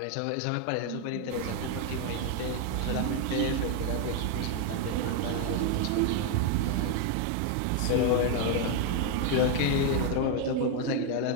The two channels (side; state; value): both; different; correlation 0.01